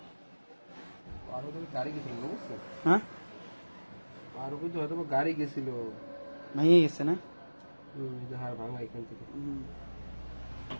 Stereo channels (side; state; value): both; inverted; correlation -1.00